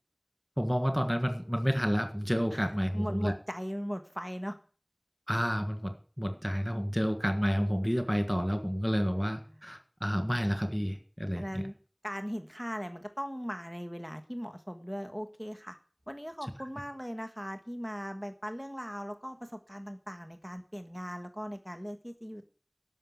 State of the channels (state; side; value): identical; both; correlation 1.00